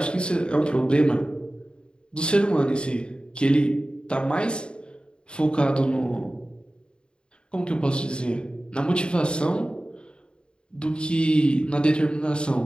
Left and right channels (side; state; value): right; late; 0.052 ms